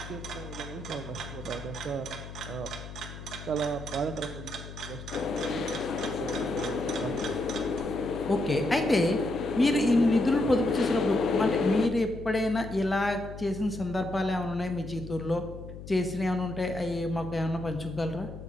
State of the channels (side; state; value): left; noise; hum, 12 dB below the sound